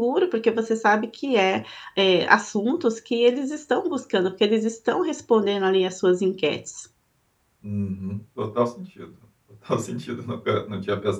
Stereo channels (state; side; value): identical; both; correlation 1.00